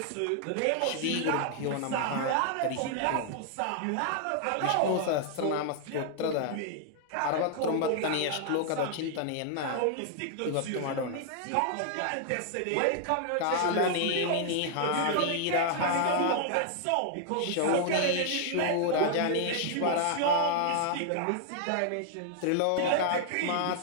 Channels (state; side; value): different; both; correlation 0.00